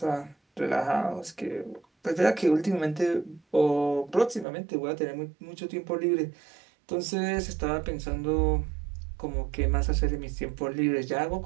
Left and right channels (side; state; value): left; drops out; at 4.5 s